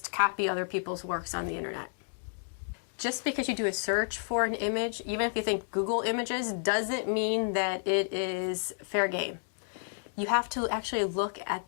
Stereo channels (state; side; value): silent; right; digital silence